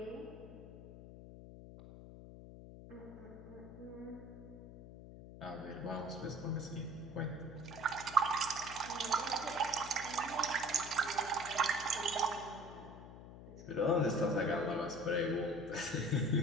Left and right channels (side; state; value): left; noise; hum, 14 dB below the sound